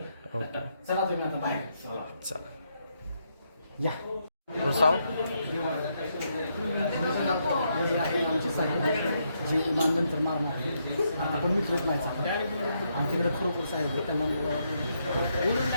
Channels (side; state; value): both; inverted; correlation -0.78